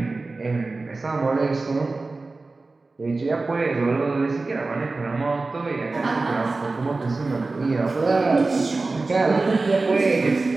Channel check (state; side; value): quieter; left; 3.5 dB